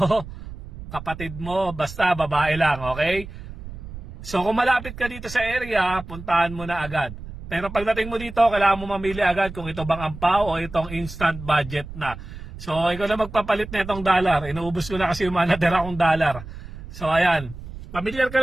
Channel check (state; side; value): noise; right; rumble, 13 dB below the sound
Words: kapatid mo, basta babae lang, okay? So kung malapit ka dito sa area, puntahan mo na agad. Pero pagdating mo dito, kailangan mo mamili agad kung ito bang ampaw o itong instant budget na. So ikaw na magpapalit na itong dollar. Inuubos ko na kasi yung mga natira kong dollar. So ayan, familiar ka